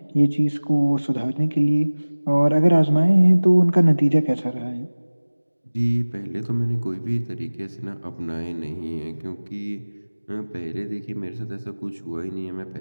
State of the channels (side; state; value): both; inverted; correlation -1.00